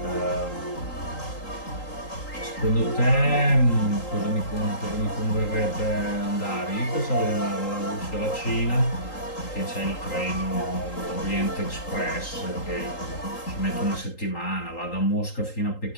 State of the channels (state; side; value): late; right; 3.8 ms